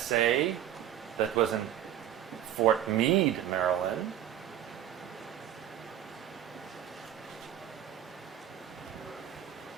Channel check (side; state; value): left; quieter; 11.0 dB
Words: that was in Fort Meade, Maryland.